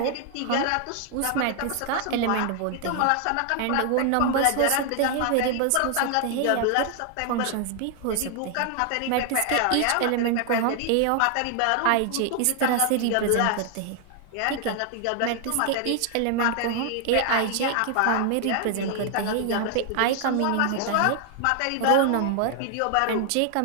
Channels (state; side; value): different; both; correlation 0.00